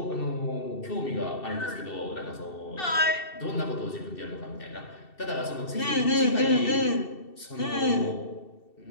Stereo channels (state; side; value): late; right; 2.7 ms